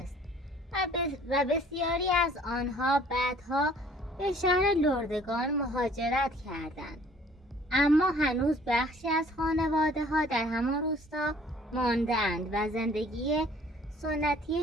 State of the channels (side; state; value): both; normal; correlation 0.55